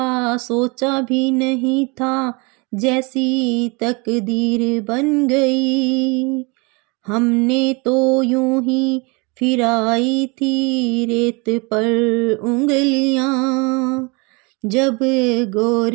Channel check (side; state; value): left; quieter; 28.9 dB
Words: सोचा भी नहीं था, जैसी तकदीर बन गई। हमने तो यूं ही फिराई थी रेत पर उंगलियां, जब